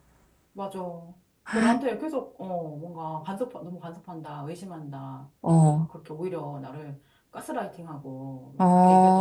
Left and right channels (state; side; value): identical; both; correlation 1.00